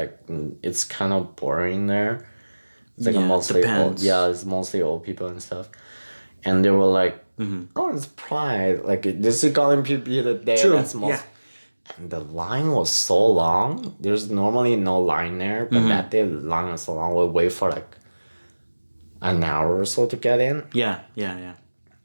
it's kind of boring there. It's like Yeah, mostly depends. it's mostly old people and stuff, and they were like, oh, it's Pride, like this is gonna be the day True, that's most. yeah. And the line was so long. There's normally no line there, but that day the line was so long. We wait for like an hour or so to get in. Yeah, yeah, yeah.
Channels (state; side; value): inverted; both; correlation -1.00